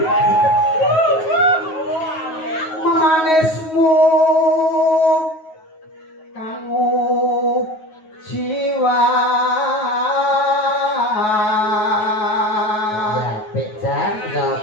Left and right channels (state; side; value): late; right; 9.4 ms